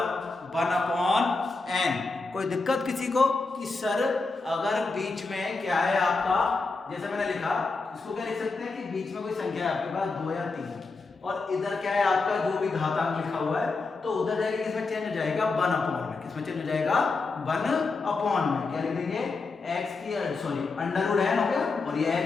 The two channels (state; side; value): quieter; right; 3.9 dB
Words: 1/n। कोई दिक्कत किसी को कि सर अगर बीच में क्या है आपका, जैसे मैंने लिखा इसको क्या लिख सकते हैं कि बीच में कोई संख्या है आपके पास 2 या 3 और इधर क्या है आपका जो भी घातांक लिखा हुआ है तो उधर जाके किसमें चेंज हो जाएगा 1/n में। किसमें चेंज हो जाएगा 1/n में। क्या लिख देंगे x की √n हो गया और ये x